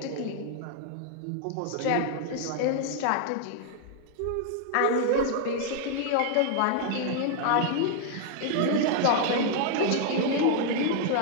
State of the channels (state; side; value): different; both; correlation 0.00